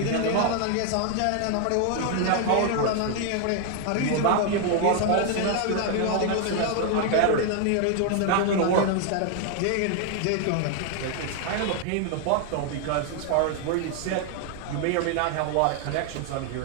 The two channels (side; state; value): both; different; correlation 0.00